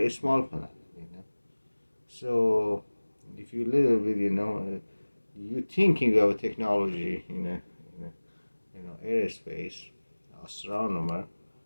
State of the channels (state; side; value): inverted; both; correlation -1.00